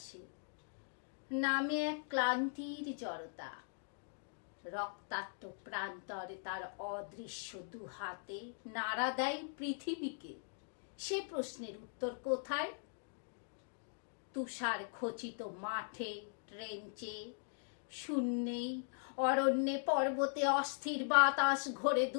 নামে এক ক্লান্তির জড়তা। রক্তাক্ত প্রান্তরে তার অদৃশ্য দুহাতে নাড়া দেয় পৃথিবীকে। সে প্রশ্নের উত্তর কোথায়? তুষার খচিত মাঠে, ট্রেঞ্চে, শূন্যে, অরণ্যে, পর্বতে অস্থির বাতাস ঘোরে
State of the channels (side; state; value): right; silent; digital silence